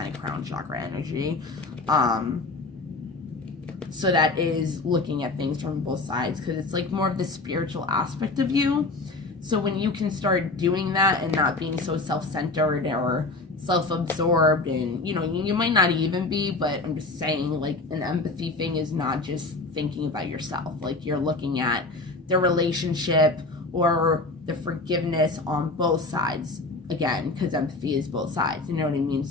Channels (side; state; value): right; quieter; 3.4 dB